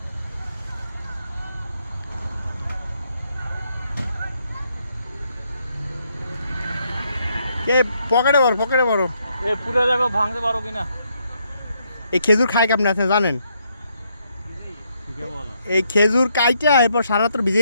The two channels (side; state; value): both; inverted; correlation -0.75